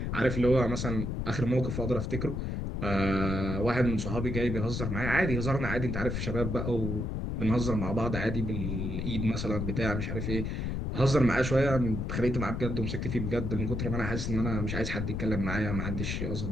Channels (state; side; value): noise; left; rumble, 2 dB below the sound